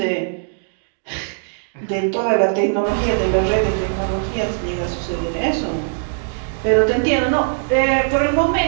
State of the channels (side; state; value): left; silent; digital silence